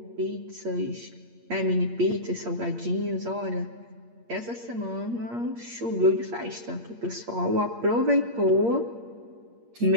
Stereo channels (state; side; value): late; left; 8.6 ms